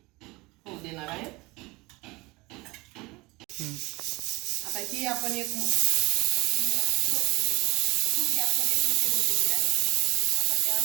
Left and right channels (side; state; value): left; quieter; 23.2 dB